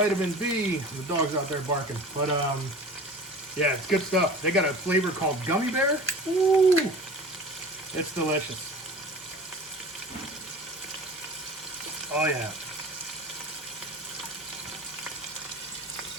B. The dog's out there barking. But, yeah, it's good stuff. They got a flavor called Gummy Bear. Ooh, it's delicious. Oh, yeah.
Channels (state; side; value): normal; both; correlation 0.38